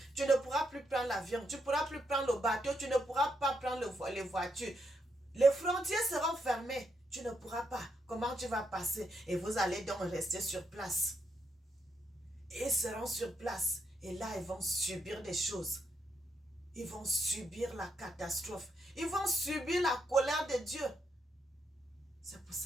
Tu ne pourras plus prendre l'avion, tu ne pourras plus prendre le bateau, tu ne pourras pas prendre les voitures. Les frontières seront fermées. Tu ne pourras pas. Comment tu vas passer? Et vous allez donc rester sur place. Ils seront sur place. Et là, ils vont subir des choses. Ils vont subir la catastrophe. Ils vont subir la colère de Dieu. C'est pour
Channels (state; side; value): normal; both; correlation 0.80